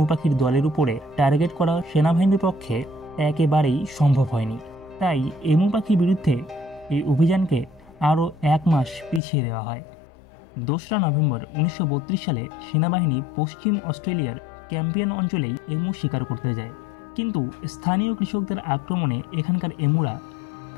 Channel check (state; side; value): drops out; right; at 9.2 s